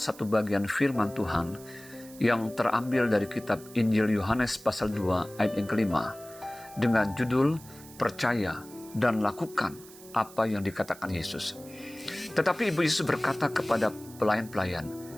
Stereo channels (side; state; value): right; noise; hiss, 20 dB below the sound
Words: bagian firman Tuhan yang terambil dari kitab Injil Yohanes pasal 2 ayat yang kelima dengan judul Percaya dan Lakukan apa yang dikatakan Yesus. Tetapi Ibu Yesus berkata kepada pelayan-pelayan,